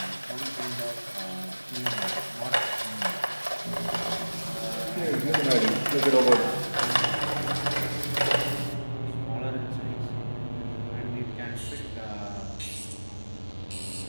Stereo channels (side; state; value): both; inverted; correlation -1.00